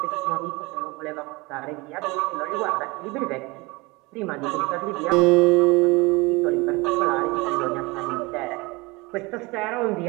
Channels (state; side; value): quieter; left; 24.6 dB